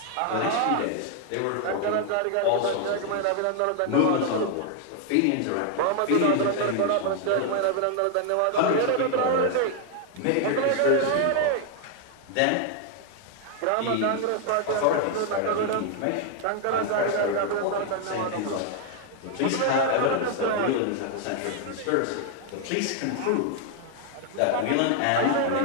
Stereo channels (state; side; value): different; both; correlation 0.00